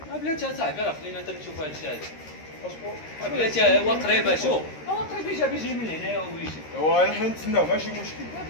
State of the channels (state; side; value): late; right; 13 ms